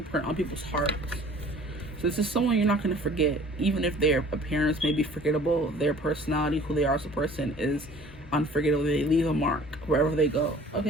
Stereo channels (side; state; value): both; normal; correlation 0.50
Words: on people's hearts. So this is someone you're not going to forget. Even if their appearance may be forgettable, their personality, who they are as a person, is unforgettable. They leave a mark wherever they go.